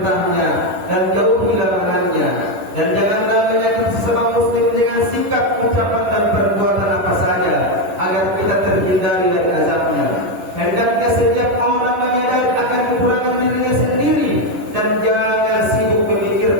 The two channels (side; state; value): left; late; 10 ms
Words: dan jauhi larangannya. Dan janganlah menyakiti sesama muslim dengan sikap, ucapan dan perbuatan apa saja, agar kita terhindari dari azabnya. Hendaknya setiap orang menyadari akan kekurangan dirinya sendiri dan jangan sibuk